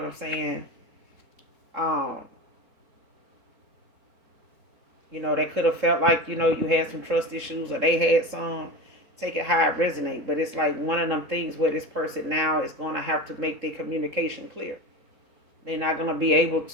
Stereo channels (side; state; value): left; late; 3.8 ms